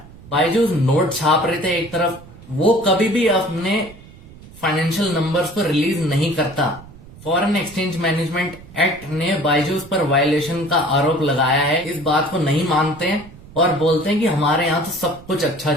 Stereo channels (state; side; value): noise; right; rumble, 20 dB below the sound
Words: बायजूस नोट छाप रहे थे एक तरफ, वो कभी भी अपने फाइनेंशियल नंबर्स को रिलीज नहीं करता। फॉरेन एक्सचेंज मैनेजमेंट एक्ट ने बायजूस पर वायलेशन का आरोप लगाया है, इस बात को नहीं मानते हैं और बोलते हैं कि हमारे यहाँ तो सब कुछ अच्छा